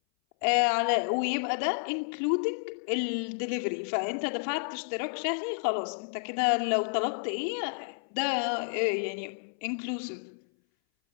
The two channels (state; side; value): silent; right; 58 dB below the other